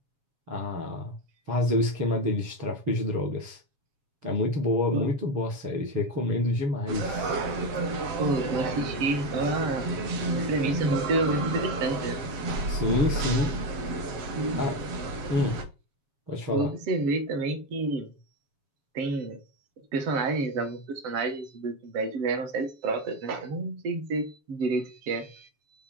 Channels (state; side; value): late; left; 7.2 ms